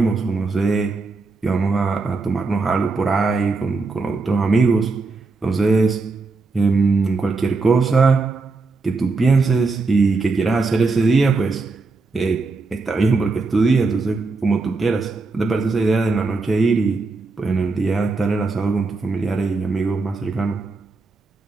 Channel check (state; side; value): quieter; left; 3.8 dB